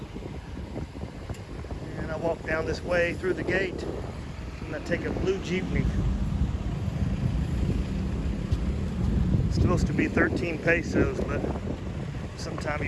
And I walk down this way through the gate, and I take a blue jeepney. It's supposed to be 13 pesos, but sometime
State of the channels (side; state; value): both; identical; correlation 1.00